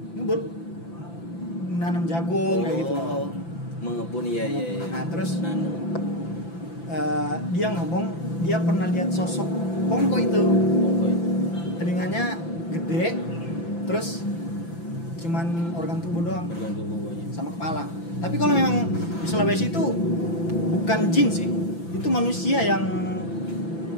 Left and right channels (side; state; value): right; late; 5.9 ms